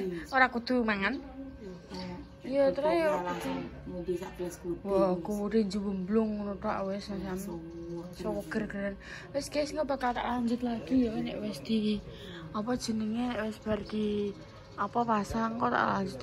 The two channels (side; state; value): both; identical; correlation 1.00